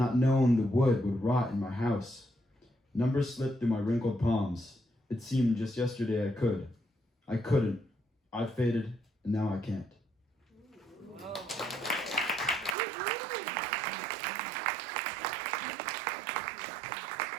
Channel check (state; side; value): drops out; left; at 12.8 s